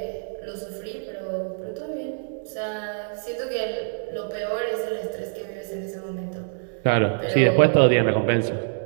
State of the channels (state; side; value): silent; left; digital silence